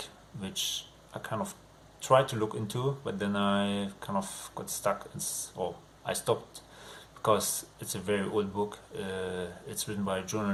which I kind of tried to look into, but then I kind of got stuck, or I stopped, because it's a very old book. It's written by a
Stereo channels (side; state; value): both; identical; correlation 1.00